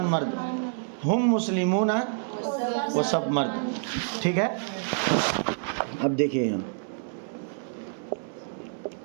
مرد. ہم مسلمون، وہ سب مرد. ٹھیک ہے. اب دیکھیے یہاں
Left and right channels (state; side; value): silent; left; digital silence